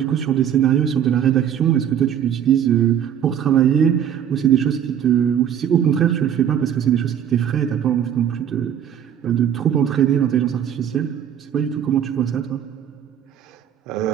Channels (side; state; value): left; quieter; 9.4 dB